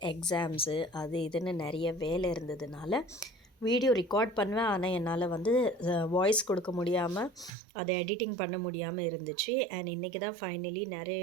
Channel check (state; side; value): drops out; left; at 7.5 s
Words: எக்ஸாம்ஸு, அது இதுன்னு நிறைய வேலை இருந்ததுனால வீடியோ ரெக்கார்ட் பண்ணுவேன். ஆனால் என்னால் வாய்ஸ் கொடுக்க முடியாமல் அதை எடிட்டிங் பண்ண முடியாமல் இருந்துச்சு. அண்ட் இன்றைக்கி தான் ஃபைனலி